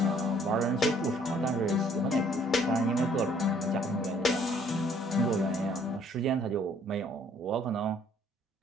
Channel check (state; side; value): normal; both; correlation 0.61